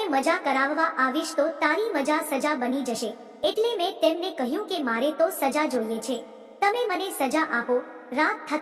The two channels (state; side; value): identical; both; correlation 1.00